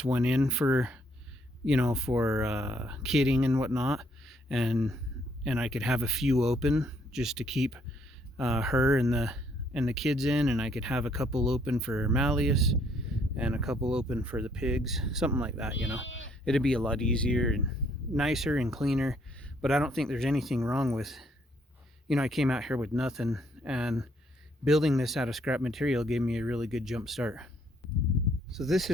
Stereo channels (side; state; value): both; normal; correlation 0.68